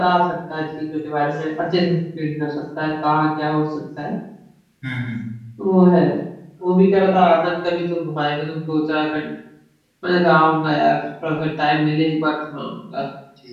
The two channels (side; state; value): both; identical; correlation 1.00